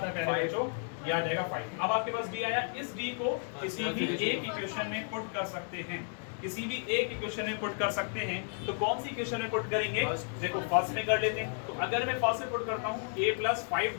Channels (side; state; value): right; silent; 56 dB below the other